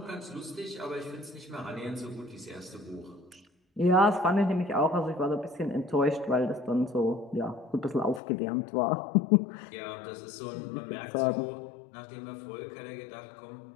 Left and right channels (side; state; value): right; drops out; at 8.2 s